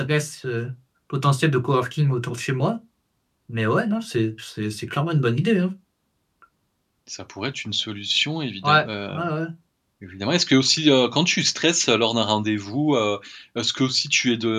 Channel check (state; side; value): identical; both; correlation 1.00